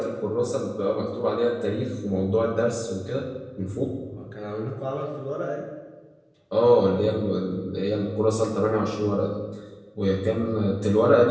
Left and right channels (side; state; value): both; identical; correlation 1.00